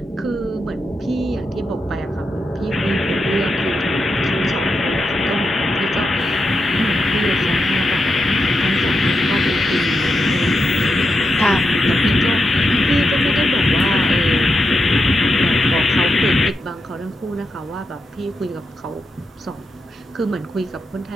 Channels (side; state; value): both; normal; correlation 0.85